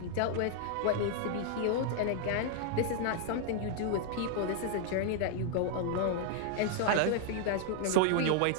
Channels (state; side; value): different; both; correlation 0.00